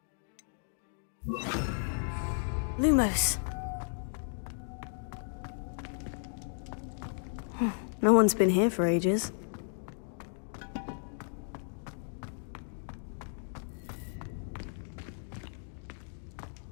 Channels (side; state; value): right; silent; digital silence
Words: Lumos. No one's been here for ages.